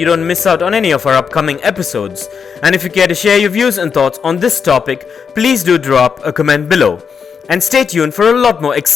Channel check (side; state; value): right; quieter; 6.4 dB